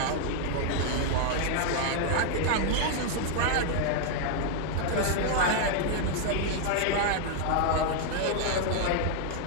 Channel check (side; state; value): both; different; correlation 0.00